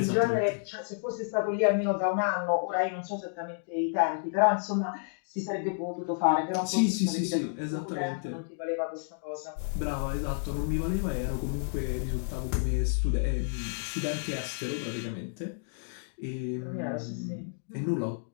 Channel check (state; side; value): silent; right; digital silence